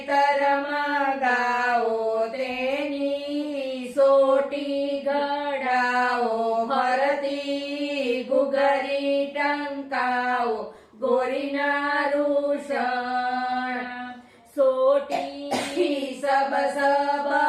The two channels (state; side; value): identical; both; correlation 1.00